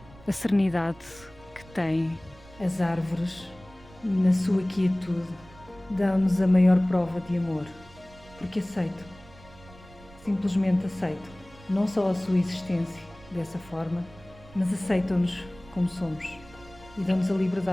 a serenidade que têm as árvores na sua quietude. Dão-nos a maior prova de amor, porque aceito, simplesmente aceito, não só a sua existência dessa forma, mas aceitam-nos como somos e dão-nos a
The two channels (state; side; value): noise; right; rumble, 22 dB below the sound